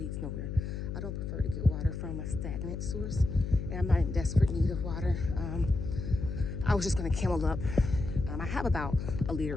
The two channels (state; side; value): noise; left; hum, 5 dB below the sound